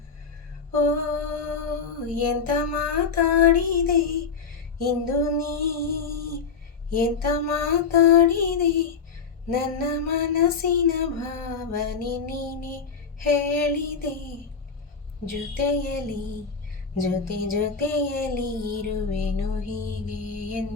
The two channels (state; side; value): quieter; right; 5.5 dB